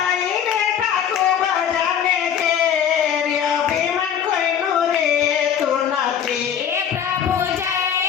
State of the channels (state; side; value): quieter; right; 8.5 dB